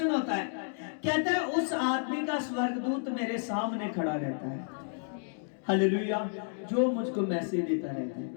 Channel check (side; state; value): right; silent; digital silence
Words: होता है, कहता है उस आदमी का स्वर्गदूत मेरे सामने खड़ा रहता है, हालेलुया, जो मुझको मैसेज देता रहता है,